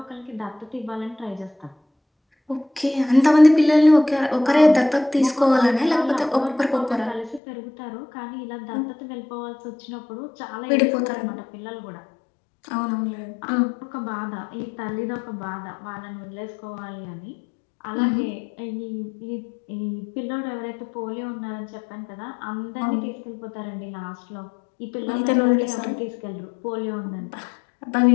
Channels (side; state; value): right; drops out; at 7.4 s